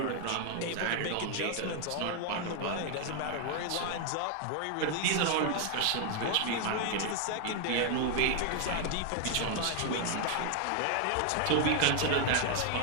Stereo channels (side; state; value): both; different; correlation 0.00